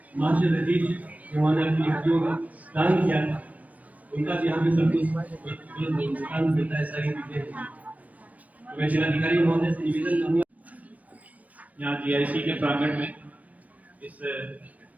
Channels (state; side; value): late; left; 0.071 ms